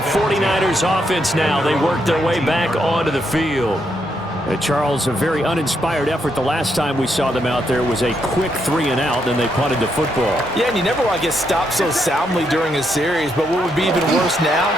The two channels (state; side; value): normal; both; correlation 0.78